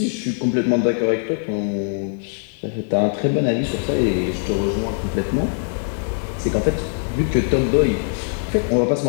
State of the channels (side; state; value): right; silent; 65 dB below the other